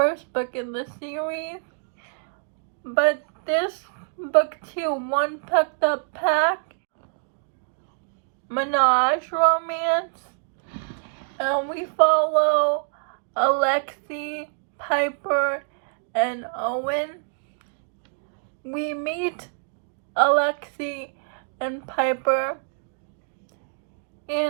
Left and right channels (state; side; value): silent; left; digital silence